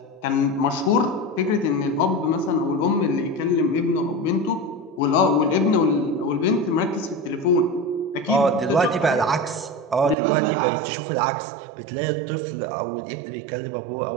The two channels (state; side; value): drops out; left; at 10.2 s